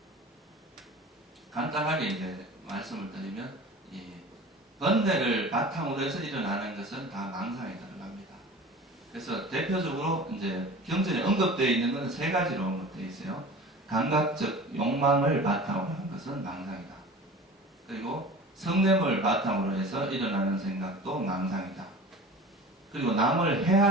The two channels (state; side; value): normal; both; correlation 0.38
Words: 간단하게 이제 말씀을 드리면, 이 번뇌를 바탕으로 해서 일어나는 것은 다 망상에 들어갑니다. 그래서 대표적으로 이제 경전에 언급되어 있는 것은 세 가지로 언급되어 있어요. 감각적 욕망을 바탕으로 하는 것은 망상이다. 그리고 성냄을 바탕으로 해서 일어나는 생각도 망상이다. 그리고 남을